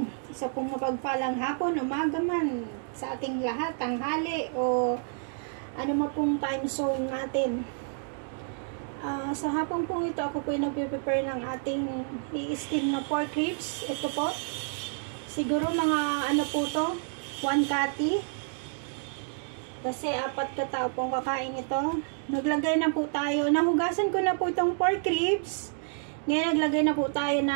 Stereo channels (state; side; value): silent; left; 58 dB below the other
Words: Isa pong mapagpalang hapon, umaga man sa ating lahat, tanghali o ano man pong time zone natin. Sa hapon pong ito, ako po ay nagpe-prepare ng ating i-steam na pork ribs. Ito po, siguro mga ano po to, 1 kati. Kasi 4 katao pong kakain ito. Naglagay na po tayo, nahugasan ko na po itong pork ribs. Ngayon naglagay na po tayo